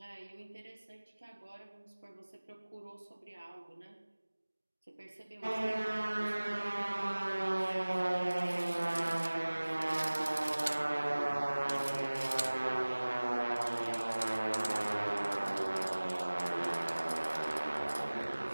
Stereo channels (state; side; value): inverted; both; correlation -1.00